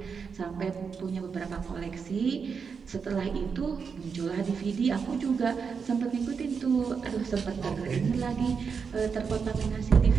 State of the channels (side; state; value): left; quieter; 5.9 dB